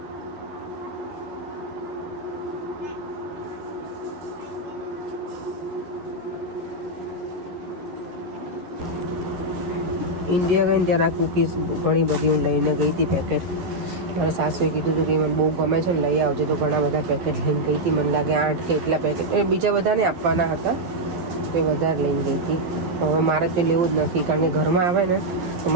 ઇન્ડિયા ગઈ ત્યારે આ કૂકીઝ ઘણી બધી હું લઈને ગઈ હતી પેકેટ. મારા સાસુએ કીધું હતું કે મને બહુ ગમે છે ને લઈ આવજો, તો ઘણા બધા પેકેટ લઈને ગઈ હતી. મને લાગે 8 કે એટલા પેકેટ, બીજા બધાને આપવાના હતા તો એ વધારે લઈને ગઈ હતી. તો હવે મારે તે લેવું જ નથી, કારણ કે ઘરમાં આવે ને તો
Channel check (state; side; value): late; left; 11 ms